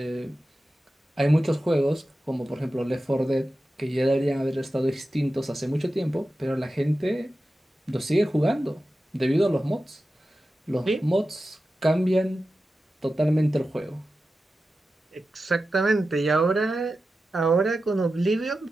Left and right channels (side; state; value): both; normal; correlation 0.93